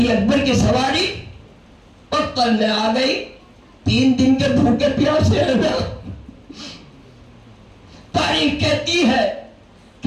اکبر کی سواری مقتل میں آ گئی. 3 دن کے بھوکے پیاسے ہیں نا. تاریخ کہتی ہے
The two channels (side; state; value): both; identical; correlation 1.00